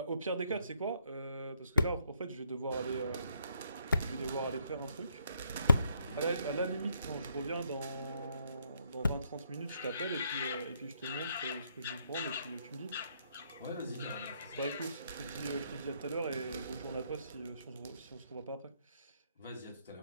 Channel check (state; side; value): inverted; both; correlation -0.73